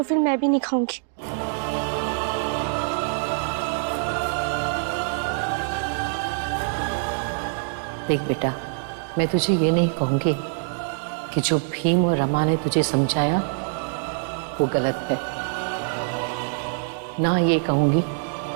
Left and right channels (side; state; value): left; silent; digital silence